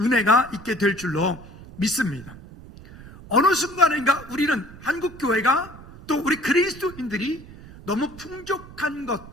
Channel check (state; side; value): noise; right; rumble, 18 dB below the sound